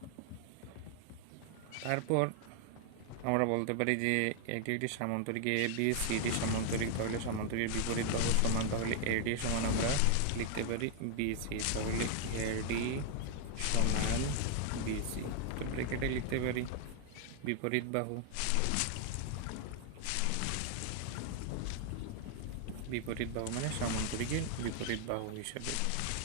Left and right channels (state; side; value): different; both; correlation 0.00